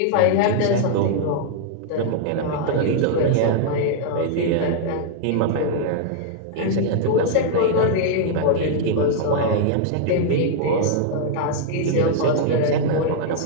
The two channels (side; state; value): both; different; correlation -0.01